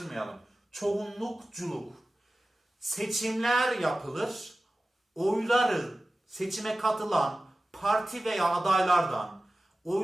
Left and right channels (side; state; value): both; normal; correlation 0.96